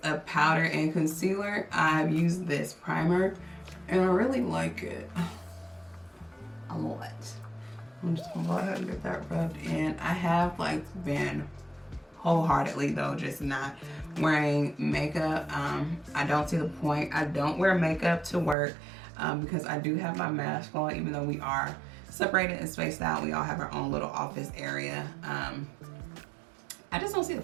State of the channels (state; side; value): drops out; left; at 18.6 s